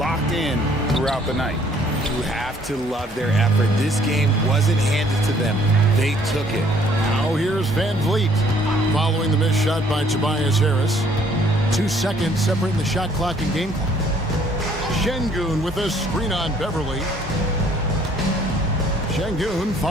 in throughout the night. You have to love their effort. This game wasn't handed to them. They took it. Now here's Van Vliet following the missed shot by Tobias Harris. 2 seconds separating the shot clock and game clock. Şengün with a screen on Beverly. Şengün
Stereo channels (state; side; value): normal; both; correlation 0.61